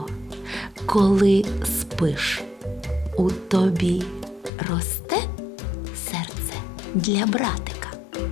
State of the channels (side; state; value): right; drops out; at 4.5 s